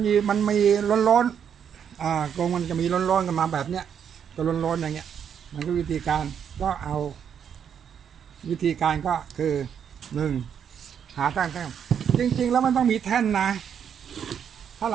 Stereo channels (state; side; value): quieter; left; 8.1 dB